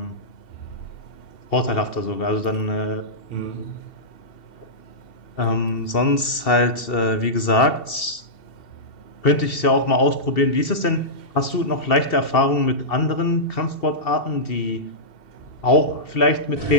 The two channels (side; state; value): right; late; 2.7 ms